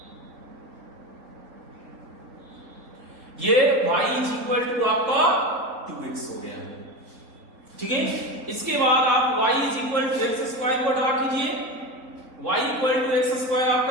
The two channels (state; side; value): late; left; 3.9 ms